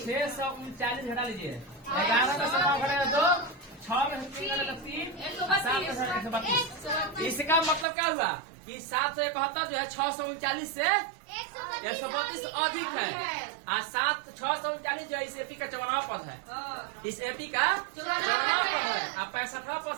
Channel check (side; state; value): left; drops out; at 7.9 s